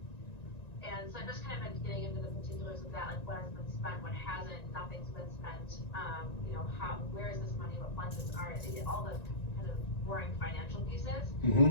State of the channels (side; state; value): right; late; 1.9 ms